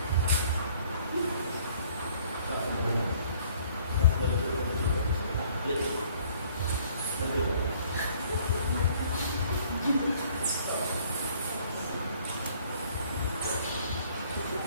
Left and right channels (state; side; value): inverted; both; correlation -0.58